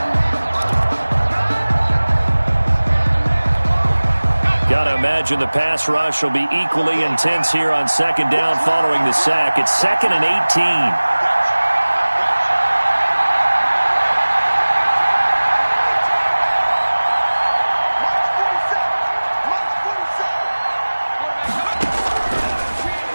Gotta imagine the pass rush will be equally intense here on second down following the sack. It's 2nd and 18.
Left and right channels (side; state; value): both; inverted; correlation -1.00